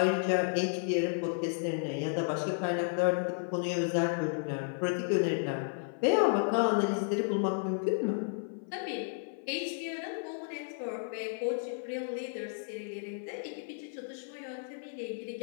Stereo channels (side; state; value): right; silent; 56 dB below the other